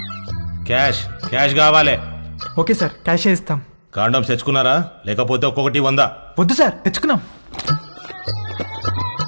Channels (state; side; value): inverted; both; correlation -1.00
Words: క్యాష్ క్యాష్ కావాలి. ఓకే సార్, క్యాష్ ఇస్తాం. కాండమ్స్ తెచ్చుకున్నారా? లేకపోతే ఒక్కొక్కటి 100. వద్దు సార్, తెచ్చుకున్నాం.